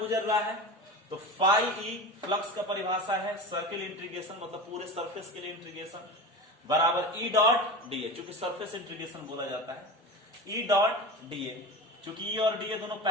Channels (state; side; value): normal; both; correlation 0.29